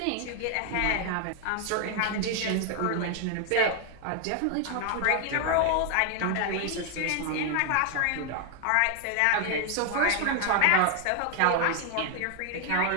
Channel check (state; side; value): different; both; correlation 0.00